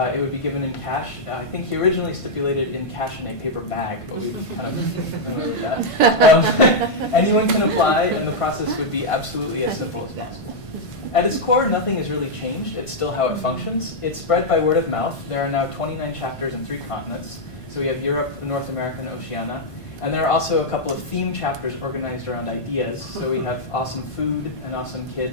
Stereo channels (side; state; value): right; late; 1.5 ms